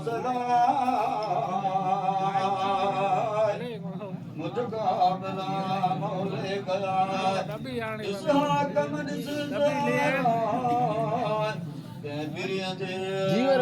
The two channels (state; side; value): identical; both; correlation 1.00